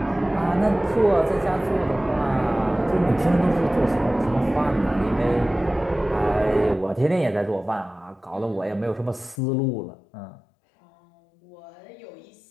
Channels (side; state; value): right; drops out; at 9.4 s